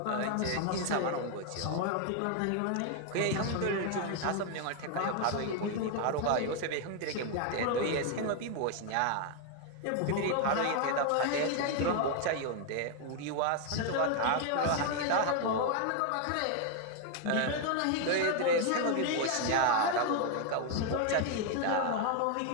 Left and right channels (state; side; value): different; both; correlation 0.01